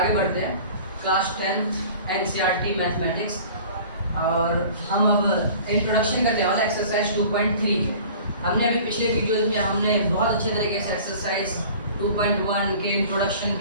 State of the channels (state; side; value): inverted; both; correlation -0.45